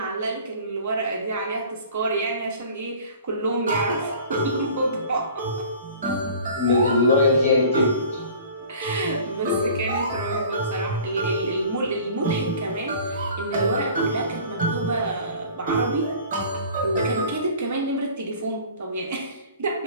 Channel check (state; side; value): inverted; both; correlation -0.45